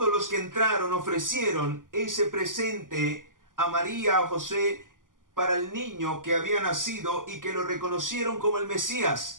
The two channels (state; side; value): late; left; 0.89 ms